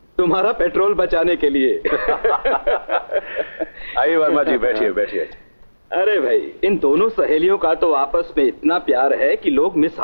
तुम्हारा पेट्रोल बचाने के लिए। आइए वर्मा जी, बैठिए बैठिए। अरे भाई, इन दोनों सहेलियों का तो आपस में इतना प्यार है कि लोग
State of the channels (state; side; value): inverted; both; correlation -1.00